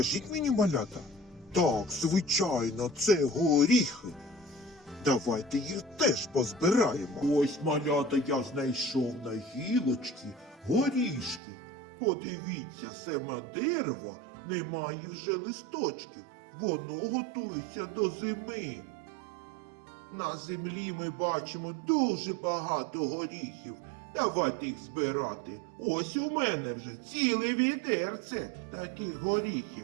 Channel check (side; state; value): left; drops out; at 11.4 s